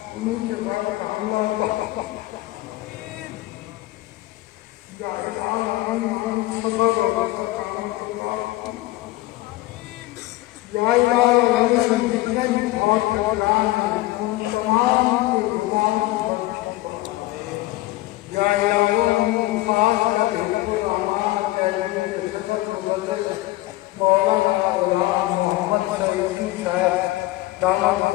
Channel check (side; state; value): right; quieter; 18.1 dB